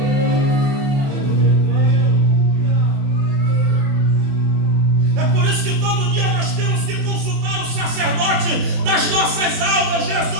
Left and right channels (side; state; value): left; late; 24 ms